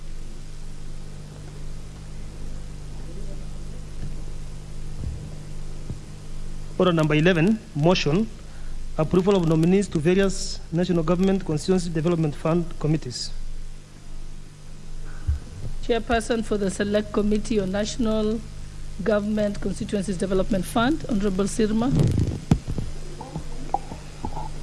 Order number 11, motion, approval of nominees to various national government constituency development fund committees. Chairperson for the Select Committee on National Government Constituencies Development Fund, Honorable Sirma.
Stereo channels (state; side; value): identical; both; correlation 1.00